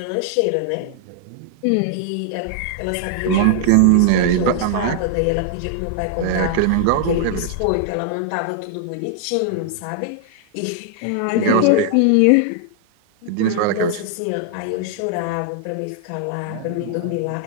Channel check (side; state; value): both; different; correlation 0.00